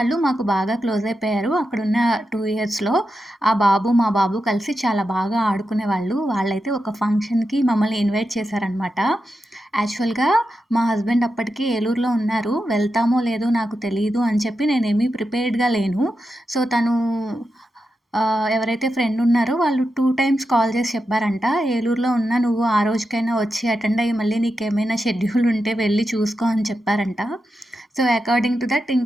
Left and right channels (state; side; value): normal; both; correlation 0.88